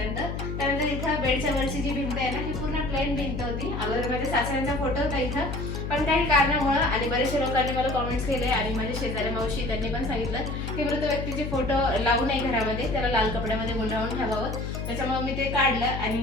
त्यानंतर इथं बेडच्या वरची जी भिंत आहे ना ही पूर्ण प्लेन भिंत होती। अगोदर माझ्या सासऱ्यांचा फोटो होता इथं, पण काही कारणामुळे आणि बरेचशा लोकांनी मला कॉमेंट्स केले आणि माझे शेजारी मावशी त्यांनी पण सांगितलं की मृत व्यक्तीचे फोटो लावू नये घरामध्ये, त्याला लाल कपड्यामध्ये गुंडाळून ठेवावं। त्याच्यामुळे मी ते काढलं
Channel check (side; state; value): left; noise; hum, 4 dB below the sound